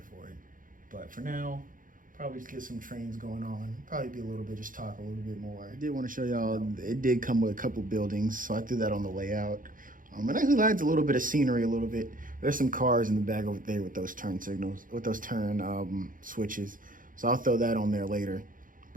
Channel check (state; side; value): late; left; 0.39 ms